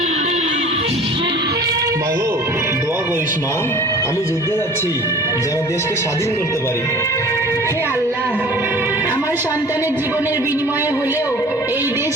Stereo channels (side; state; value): both; normal; correlation 0.45